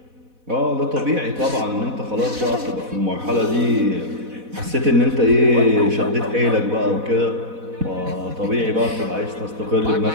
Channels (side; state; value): left; late; 4.1 ms